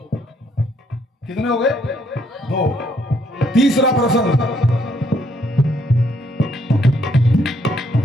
कितने हो गए? 2। तीसरा प्रश्न,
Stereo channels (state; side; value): normal; both; correlation 0.70